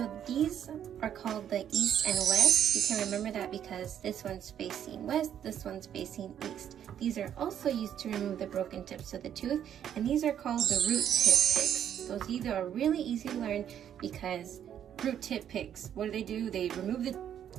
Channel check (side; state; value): left; quieter; 9.7 dB